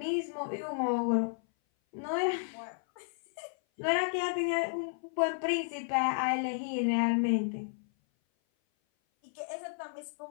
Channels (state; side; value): silent; right; 56 dB below the other